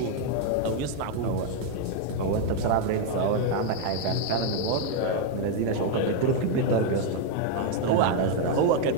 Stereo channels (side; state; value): both; different; correlation 0.00